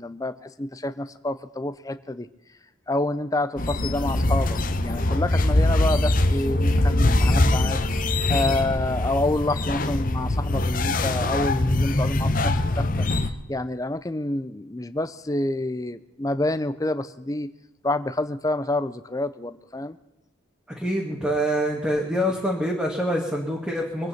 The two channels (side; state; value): both; normal; correlation 0.77